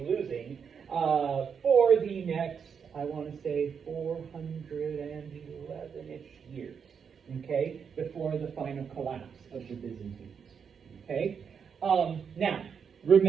the next, I want to say, 411-ish years, okay, before the final collapse of the Byzantines, okay? Now,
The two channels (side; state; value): left; quieter; 6.7 dB